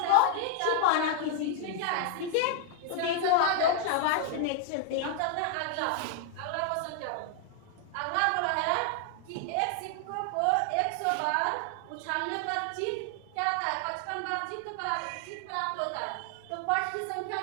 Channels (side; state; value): both; different; correlation 0.00